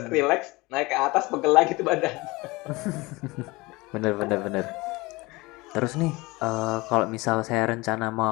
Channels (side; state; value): right; quieter; 22.8 dB